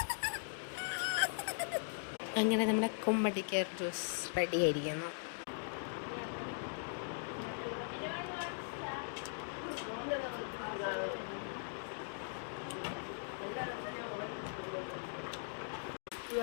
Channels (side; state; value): right; silent; digital silence